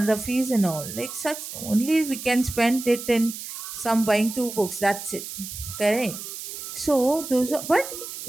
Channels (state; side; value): noise; right; hiss, 9 dB below the sound